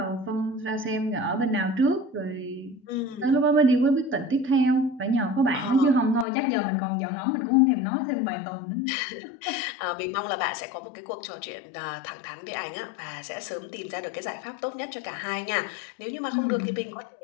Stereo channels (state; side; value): drops out; right; at 6.2 s